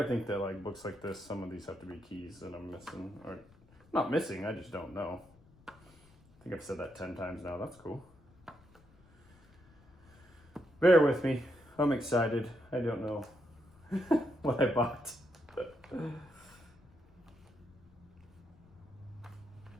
think that like books like this, some of these have to be keys that I'm missing, or not missing. I just don't know. I think I've said that 10 times now. That's cool. Bear with me. I'm excited. I don't know what I bought.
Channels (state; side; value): noise; left; rumble, 27 dB below the sound